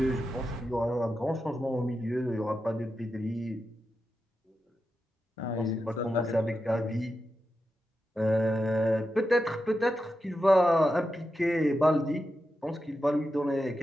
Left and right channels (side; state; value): both; normal; correlation 0.89